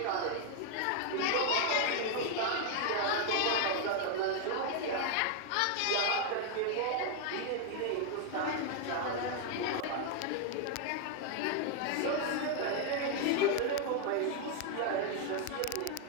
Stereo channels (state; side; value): different; both; correlation 0.00